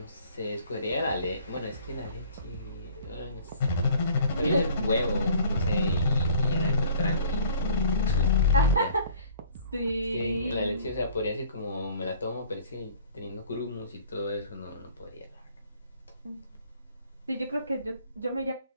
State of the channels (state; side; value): inverted; both; correlation -0.53